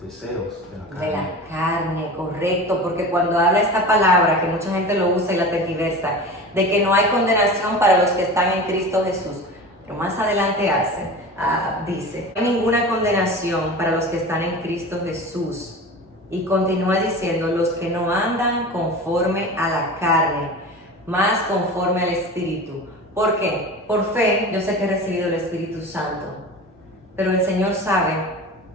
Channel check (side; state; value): both; normal; correlation 0.33